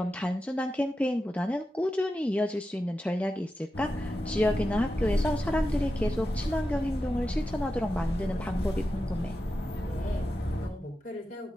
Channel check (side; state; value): both; normal; correlation 0.90